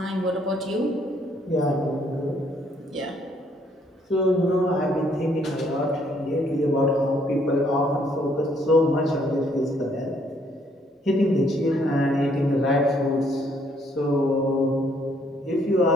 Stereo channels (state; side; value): normal; both; correlation 0.67